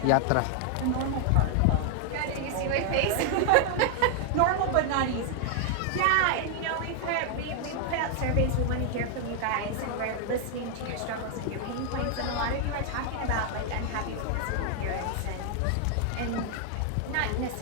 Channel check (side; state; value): both; different; correlation 0.00